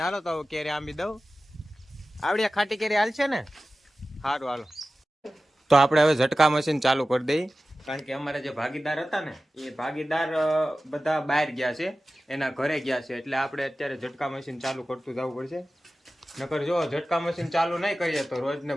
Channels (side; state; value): both; normal; correlation 0.95